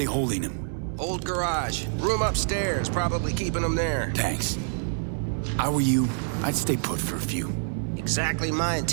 holding him? Old garage. Room upstairs. Probably keeping him there. Thanks. I were you, I'd stay put for a few. Exactly my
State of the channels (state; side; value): silent; left; 60 dB below the other